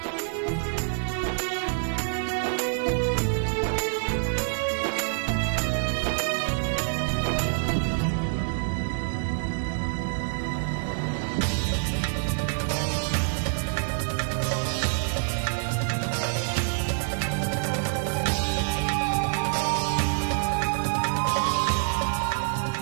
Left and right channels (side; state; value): left; silent; digital silence